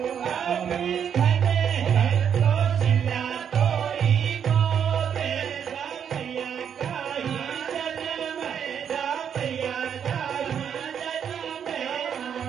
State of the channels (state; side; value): quieter; left; 8.1 dB